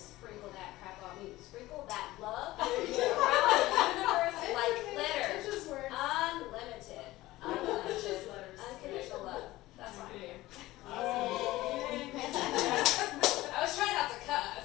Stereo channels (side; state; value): right; quieter; 17.6 dB